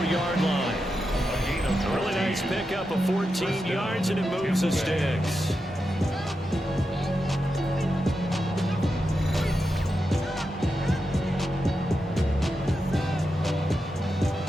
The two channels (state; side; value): normal; both; correlation 0.88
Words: line. A really nice pickup of 14 yards, and it moves the sticks.